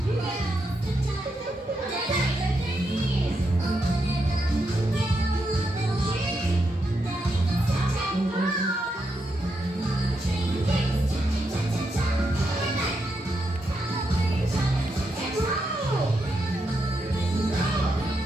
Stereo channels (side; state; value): both; normal; correlation 0.83